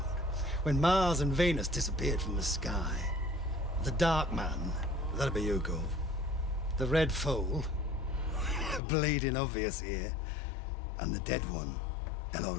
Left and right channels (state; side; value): drops out; right; at 8.8 s